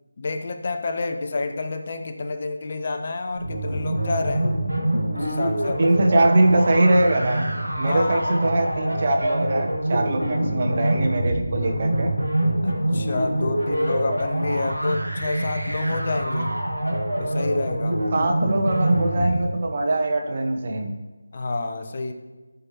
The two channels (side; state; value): both; inverted; correlation -0.94